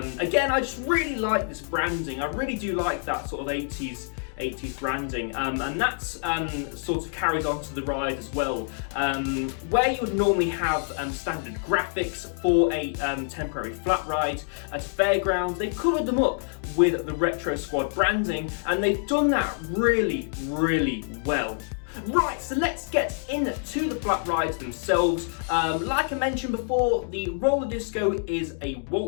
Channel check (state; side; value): silent; right; 56 dB below the other